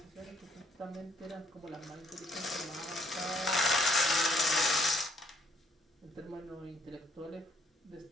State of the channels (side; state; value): both; normal; correlation 0.67